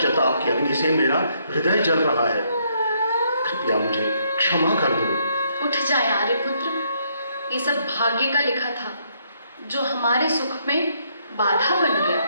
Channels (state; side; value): inverted; both; correlation -0.72